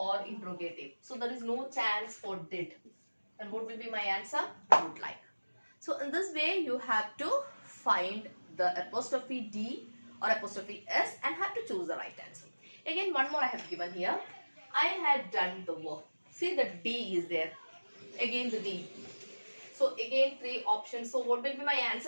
interrogative. So there is no chance for did. And what will be my answer? Would like. So in this way, you have to find the apostrophe D or apostrophe S and have to choose the right answer. Again, one more I have given here. I had done the work. See, the D is there. Again the D. So again three options. So what will be my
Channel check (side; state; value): both; inverted; correlation -1.00